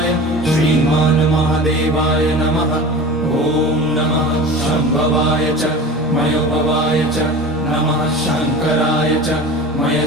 श्रीमान् महादेवाय नमः। ॐ नमः शम्भवाय च मयोभवाय च नमः शङ्कराय च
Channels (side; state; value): both; normal; correlation 0.35